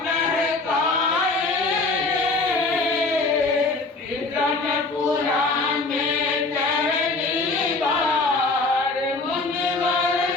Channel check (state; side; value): quieter; right; 3.5 dB